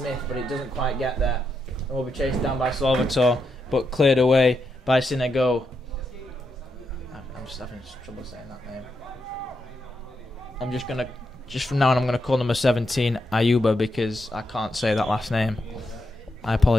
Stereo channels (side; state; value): both; normal; correlation 0.83